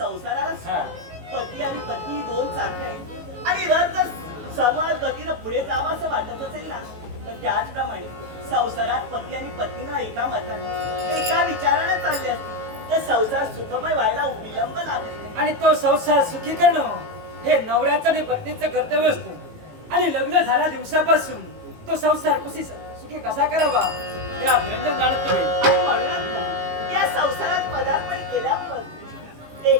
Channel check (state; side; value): late; left; 18 ms